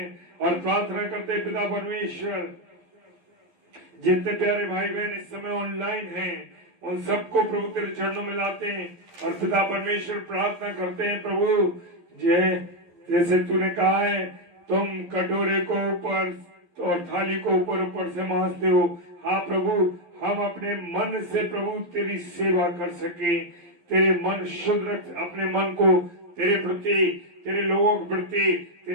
और प्रार्थना करते हैं पिता परमेश्वर, जितने प्यारे भाई बहन इस समय ऑनलाइन हैं उन सबको प्रभु तेरे चरणों में लाते हैं और पिता परमेश्वर प्रार्थना करते हैं प्रभु जैसे तूने कहा है तुम कटोरे को ऊपर और थाली को ऊपर ऊपर से मांजते हो। हाँ प्रभु, हम अपने मन से प्रभु तेरी सेवा कर सके, तेरे मन शुद्ध रख, अपने मन को तेरे प्रति, तेरे लोगों के प्रति,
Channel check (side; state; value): left; late; 11 ms